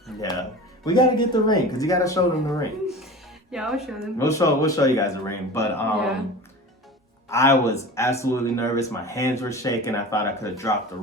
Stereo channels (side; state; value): both; normal; correlation 0.35